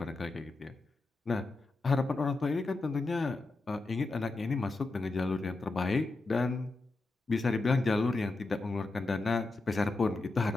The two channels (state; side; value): quieter; right; 3.3 dB